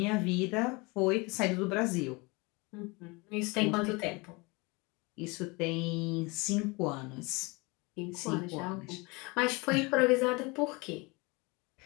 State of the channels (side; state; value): right; quieter; 26.6 dB